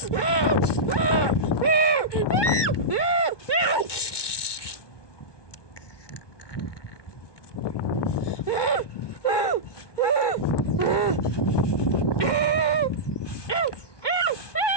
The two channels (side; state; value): right; late; 1.2 ms